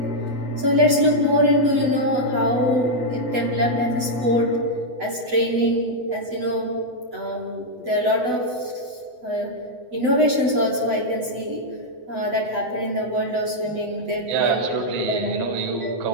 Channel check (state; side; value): late; left; 8.0 ms